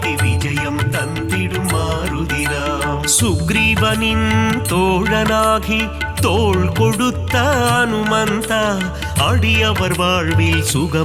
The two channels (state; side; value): identical; both; correlation 1.00